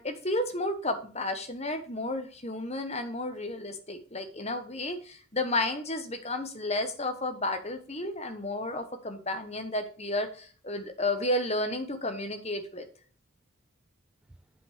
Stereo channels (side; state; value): both; normal; correlation 0.01